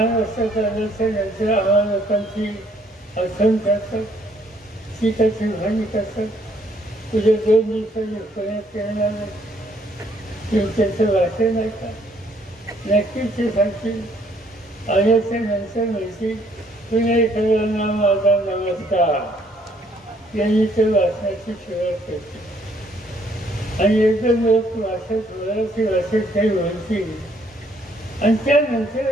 आल्याच्यानंतर आम्हा लोकांची आसन करतात, टीकाची भाणी करतात. उद्या 2 दिवसांनी पुण्यात येणार त्याचं भाषण ऐकतात. नक्कीच ते सांगतील. आल्याच्या नंतर म्हणतील पुणेकरांना माझा नमस्कार यांनी ते भाषणाची सुरुवात करते आणि एकदम लोक भाषेत मराठी भाषेत काही बोलतील आणि त्यानंतर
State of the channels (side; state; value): both; normal; correlation 0.66